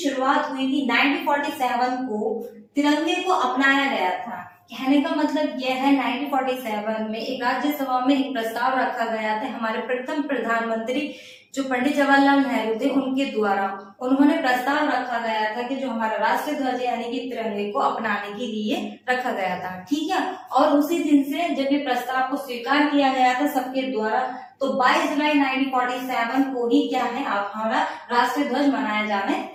हुई थी 1947 को तिरंगे को अपनाया गया था। कहने का मतलब यह है 1947 में एक राज्यसभा में एक प्रस्ताव रखा गया था, हमारे प्रथम प्रधानमंत्री जो पंडित जवाहरलाल नेहरू थे उनके द्वारा उन्होंने प्रस्ताव रखा गया था कि जो हमारा राष्ट्रीय ध्वज यानी कि तिरंगे को अपनाने के लिए रखा गया था। ठीक है, और उसी दिन से जब ये प्रस्ताव को स्वीकार किया गया था सबके द्वारा, तो 22 जुलाई 1947 को ही क्या है हमारा राष्ट्रीय ध्वज मनाया जाने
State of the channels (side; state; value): both; identical; correlation 1.00